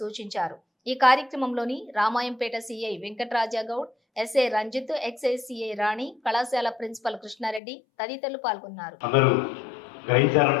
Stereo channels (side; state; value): right; drops out; at 7.6 s